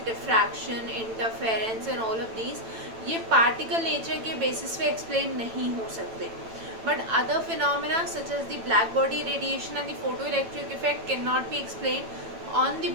diffraction, interference and all of these, ये पार्टिकल नेचर के बेसिस पे एक्सप्लेन नहीं हो सकते. But other phenomena such as the black body radiation and the photo electric effect can not be explain on the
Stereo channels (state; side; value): late; left; 9.0 ms